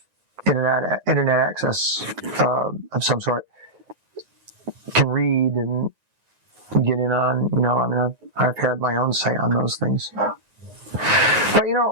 internet access of some sort can read and get in on. I mean, I've had my own say on those things. But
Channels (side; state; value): left; late; 9.5 ms